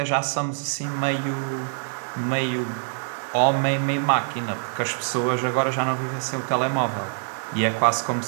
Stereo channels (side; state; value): left; silent; 62 dB below the other